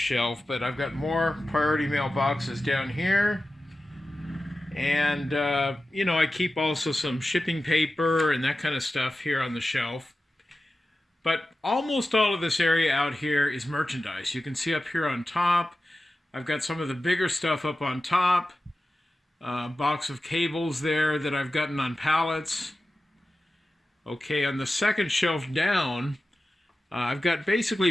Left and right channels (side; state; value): both; normal; correlation 0.94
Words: but I've got more priority mail boxes down here. And, you know, I keep also some shipping paper and that kind of stuff here on the shelf. But almost all of this area out here is merchandise. You can see up here on top, I've got some of the bigger stuff up on top. Box of cables there that I've gotten on pallets. Okay, on the second shelf down, I've got